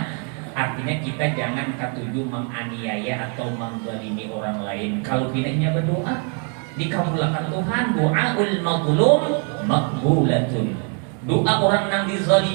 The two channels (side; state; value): left; quieter; 38.2 dB